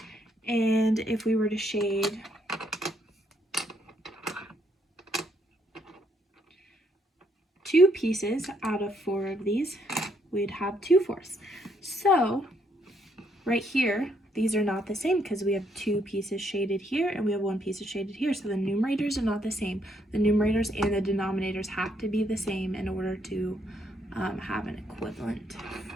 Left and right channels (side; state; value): both; normal; correlation 0.72